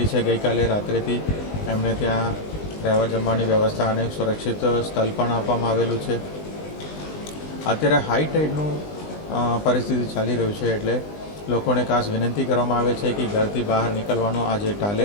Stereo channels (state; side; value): late; right; 20 ms